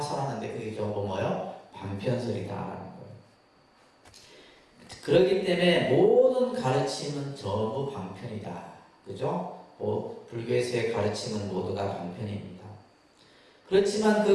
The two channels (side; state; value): both; identical; correlation 1.00